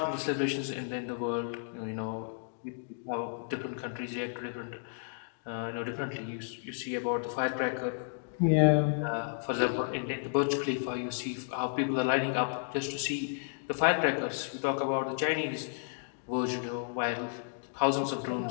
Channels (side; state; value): right; silent; digital silence